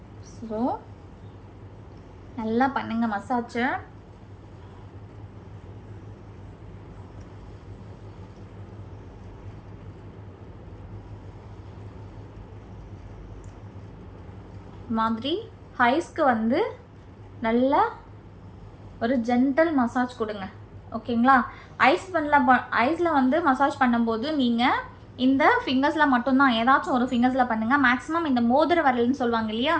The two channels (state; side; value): identical; both; correlation 1.00